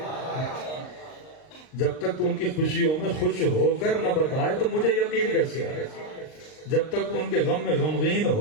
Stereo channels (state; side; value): late; right; 39 ms